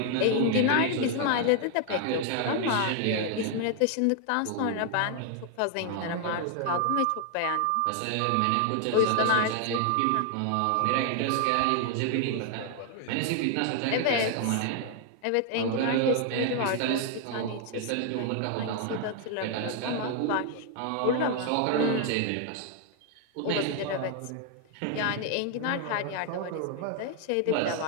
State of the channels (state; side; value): different; both; correlation 0.00